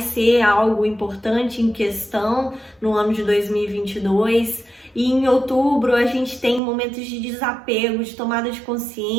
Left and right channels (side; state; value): left; drops out; at 6.6 s